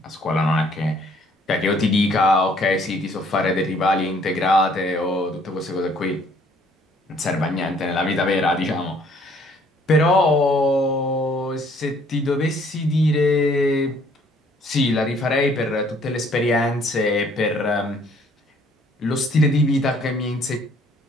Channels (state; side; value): normal; both; correlation 0.61